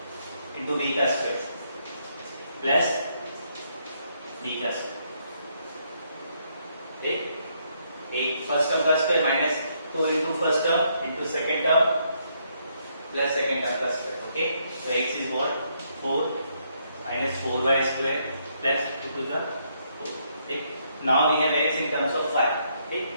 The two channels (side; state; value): both; inverted; correlation -0.73